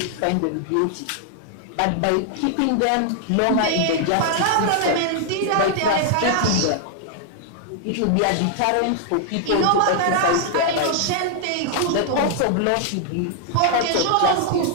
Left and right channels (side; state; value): both; different; correlation 0.00